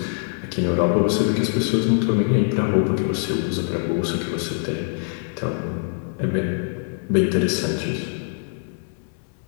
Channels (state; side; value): silent; right; digital silence